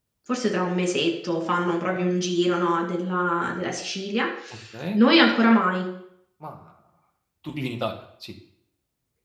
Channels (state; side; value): identical; both; correlation 1.00